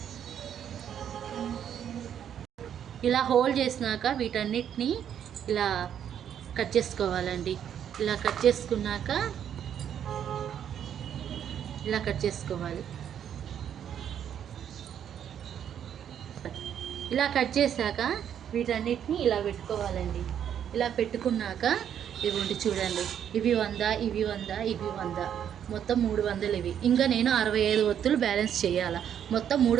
ఇలా హోల్డ్ చేసినాక వీటన్నిటిని ఇలా కట్ చేసుకోవాలండి. ఇలా కట్ చేసుకున్నాక ఇలా కట్ చేసుకోవాలి. ఇలా కట్ చేశాక వీటన్నిటిని ఇలా పెట్టుకోవాలండి. ఇలా పెట్టుకున్నాక ఇవ్వండి చూడండి, ఇవి 100, ఇవి 100, ఇవి 100, మొత్తం 300 ఇవి. ఇంకా నేను 65 ఒత్తులు బ్యాలెన్స్ చేయాలి. మొత్తం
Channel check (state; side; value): quieter; left; 9.2 dB